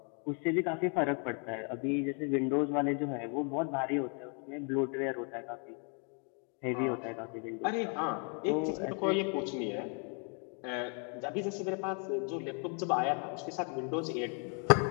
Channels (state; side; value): quieter; right; 39.9 dB